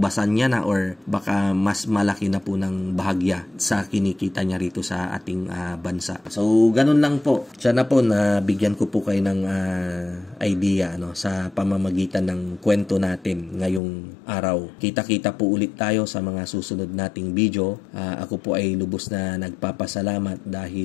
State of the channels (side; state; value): right; drops out; at 13.8 s